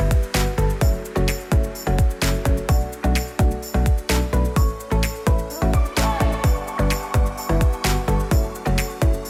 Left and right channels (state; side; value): identical; both; correlation 1.00